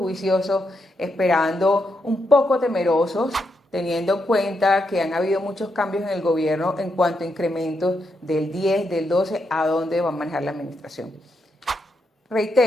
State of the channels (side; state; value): both; normal; correlation 0.82